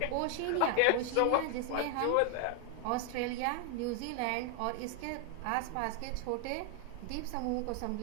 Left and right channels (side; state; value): both; different; correlation 0.01